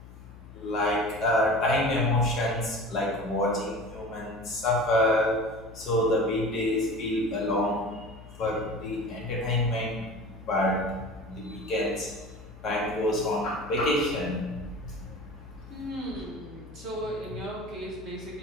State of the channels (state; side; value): noise; left; hum, 17 dB below the sound